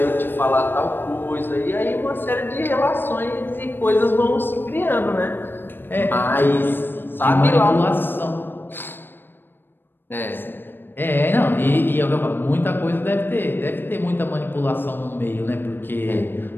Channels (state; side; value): late; right; 0.097 ms